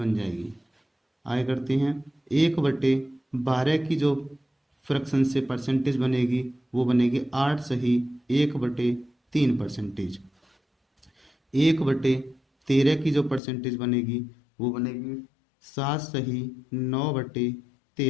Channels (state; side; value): drops out; right; at 13.4 s